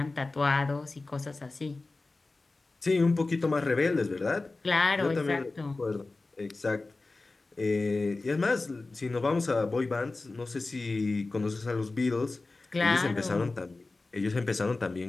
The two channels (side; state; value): right; quieter; 3.4 dB